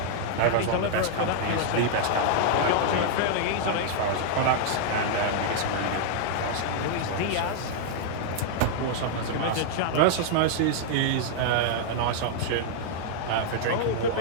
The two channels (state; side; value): different; both; correlation -0.01